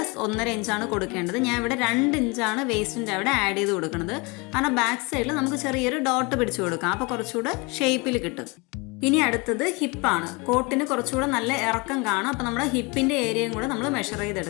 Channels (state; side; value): quieter; right; 27.9 dB